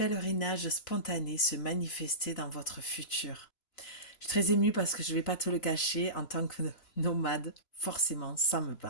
spontanés se manifester dans votre futur. Je suis très émue parce que je ne vais pas te le cacher, en tant que nomade, forcément, ça me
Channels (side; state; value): right; late; 3.0 ms